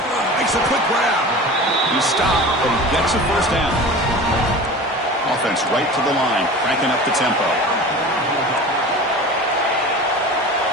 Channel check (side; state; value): both; normal; correlation 0.35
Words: Makes a quick grab. He stopped, but he gets a 1st down. Offense right to the line, cranking up the tempo.